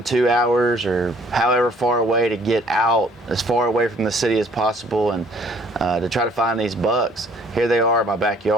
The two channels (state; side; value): normal; both; correlation 0.59